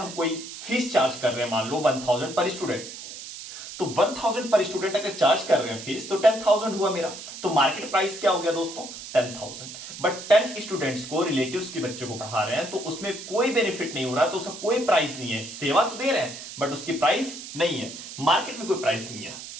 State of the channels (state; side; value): noise; right; hiss, 11 dB below the sound